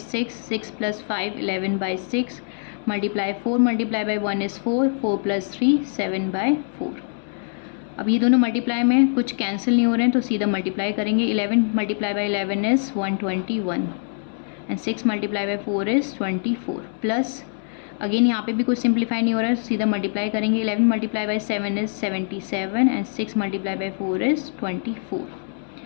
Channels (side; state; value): right; silent; digital silence